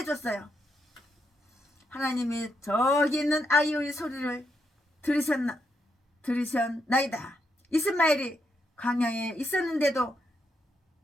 하나님이 저기 있는 아이의 소리를 들으셨나이다. 이스마엘이 광야에 있었는데도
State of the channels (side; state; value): both; normal; correlation 0.80